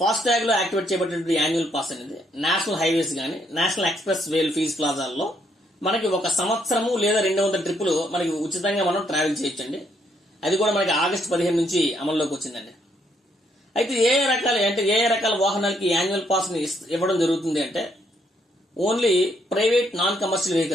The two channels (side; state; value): both; normal; correlation 0.72